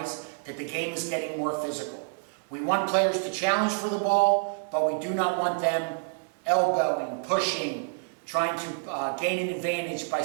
that the game is getting more physical. We want players to challenge for the ball, but we do not want them elbowing, pushing, trying to gain an advantage by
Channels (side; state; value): left; silent; 59 dB below the other